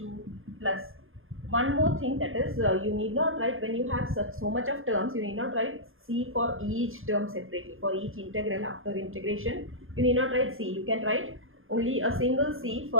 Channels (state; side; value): late; left; 0.60 ms